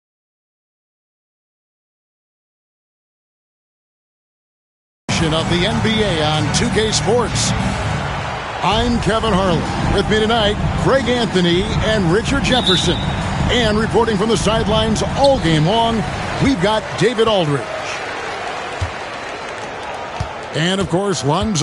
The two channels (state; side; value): identical; both; correlation 1.00